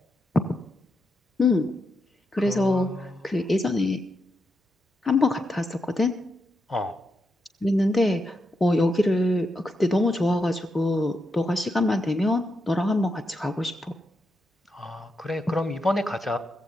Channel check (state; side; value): normal; both; correlation 0.84